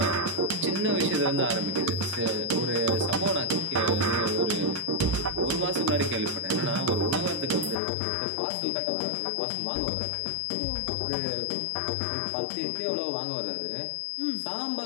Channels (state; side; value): drops out; right; at 7.8 s